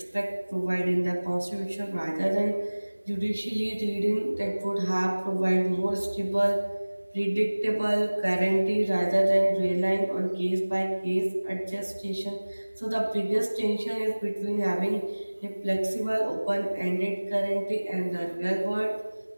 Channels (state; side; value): inverted; both; correlation -1.00